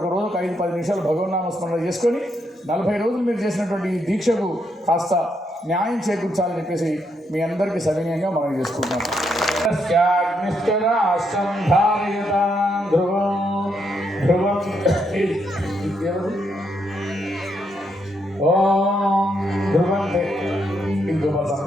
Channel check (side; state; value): both; normal; correlation 0.77